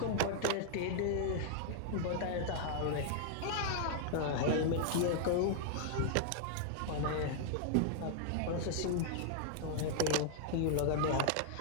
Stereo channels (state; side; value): different; both; correlation -0.01